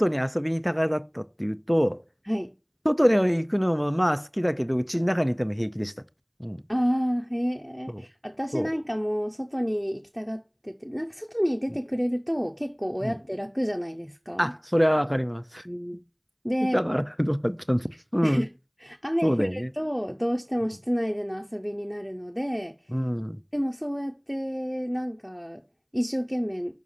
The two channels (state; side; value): identical; both; correlation 1.00